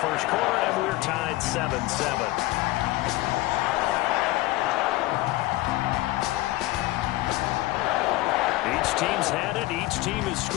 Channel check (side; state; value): right; quieter; 18.5 dB